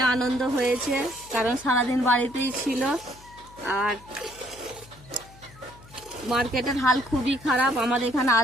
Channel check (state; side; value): noise; left; hum, 23 dB below the sound